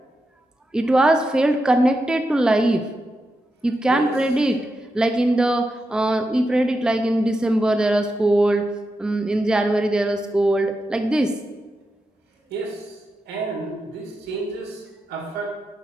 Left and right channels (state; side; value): normal; both; correlation 0.87